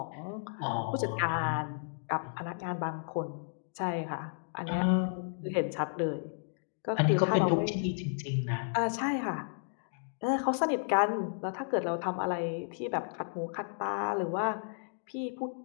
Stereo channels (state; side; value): silent; right; digital silence